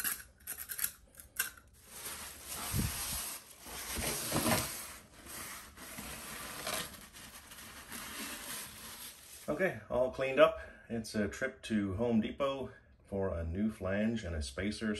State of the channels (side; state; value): both; identical; correlation 1.00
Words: Okay, all cleaned up. It's a trip to Home Depot for a new flange and a spacer